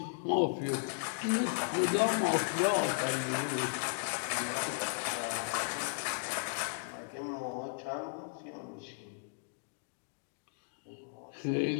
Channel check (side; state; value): right; silent; digital silence